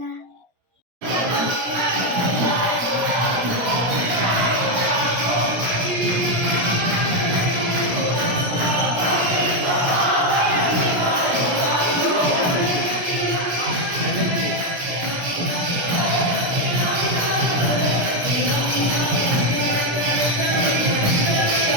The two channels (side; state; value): left; late; 17 ms